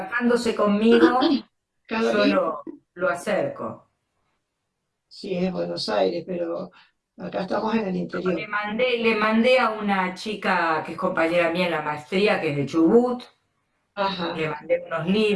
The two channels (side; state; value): both; identical; correlation 1.00